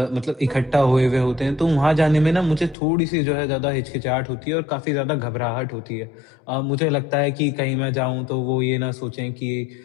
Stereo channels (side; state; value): right; drops out; at 2.8 s